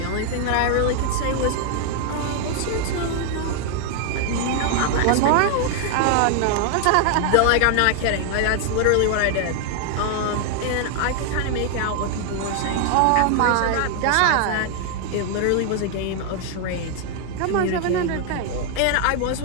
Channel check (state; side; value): different; both; correlation 0.00